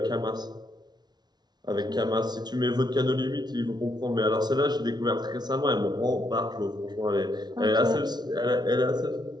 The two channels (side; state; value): left; late; 0.20 ms